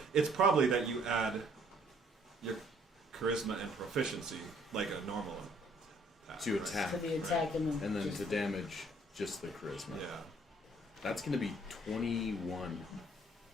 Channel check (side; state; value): both; normal; correlation 0.62